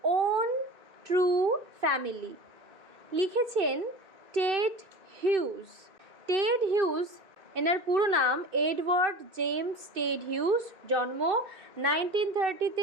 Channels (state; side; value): late; left; 2.6 ms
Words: ওন ট্রু ফ্যামিলি, লিখেছেন টেড হিউজ। টেড হিউজ, এনার পুরো নাম এডওয়ার্ড জেমস টেড হিউজ, জন্ম